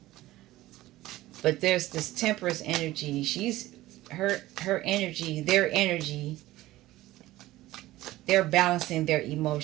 But there's this Temperance energy. Her energy, their energy, they're balancing their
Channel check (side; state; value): left; quieter; 16.7 dB